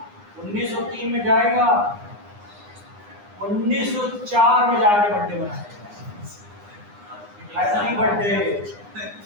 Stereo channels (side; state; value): left; late; 9.8 ms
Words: 1903 में जाएगा, 1904 में जाके बर्थडे मनाएगा। Happy birthday,